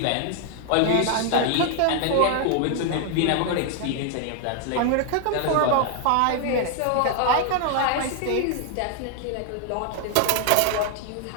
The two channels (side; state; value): both; different; correlation 0.00